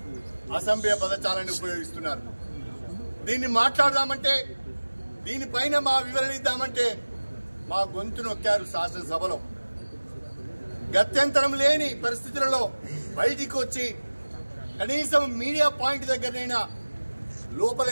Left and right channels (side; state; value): both; inverted; correlation -1.00